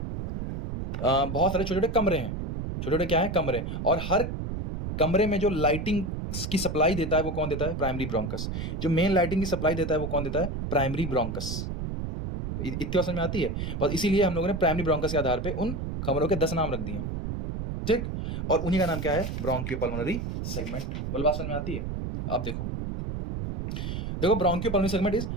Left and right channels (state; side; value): noise; right; rumble, 4 dB below the sound